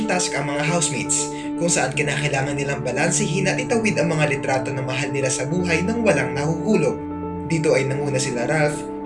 task ang mga housemates, kung saan kinakailangan nilang balansehin at itawid ang mga litrato ng mahal nila sa buhay nang walang nahuhulog. Dito ay nanguna sila Ralph,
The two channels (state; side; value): identical; both; correlation 1.00